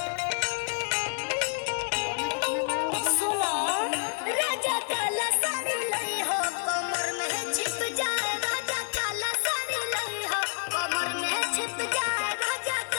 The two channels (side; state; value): right; silent; digital silence